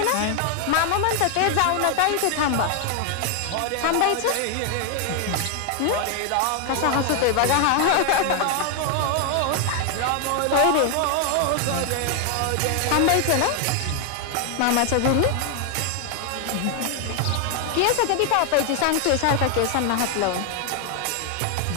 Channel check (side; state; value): both; different; correlation 0.00